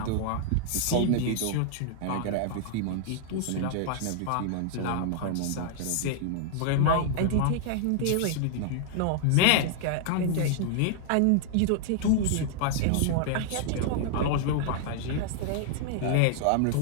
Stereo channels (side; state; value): both; different; correlation 0.00